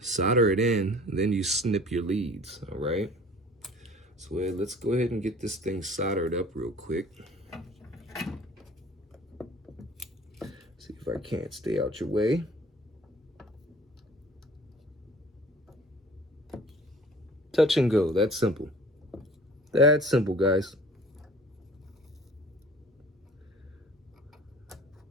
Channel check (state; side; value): normal; both; correlation 0.47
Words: solder it in, and then you snip your leads, all right? So let's go ahead and get this thing soldered up real quick. See if I can't stay out your way. Touch and go, that's simple. That's simple, guys.